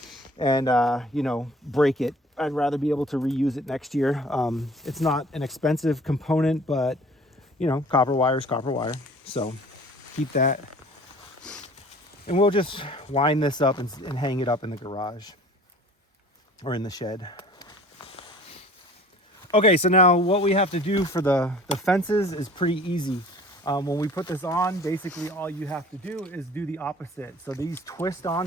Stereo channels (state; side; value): normal; both; correlation 0.49